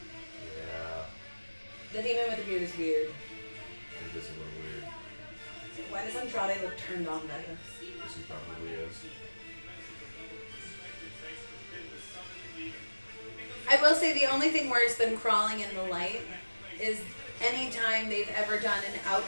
Yeah. The demon with the beard is weird. It is a little weird. Why does Andrade look turned on by this? Yes, he probably is. I will say the only thing worse than crawling in the light is anytime they've ever done an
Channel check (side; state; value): both; inverted; correlation -1.00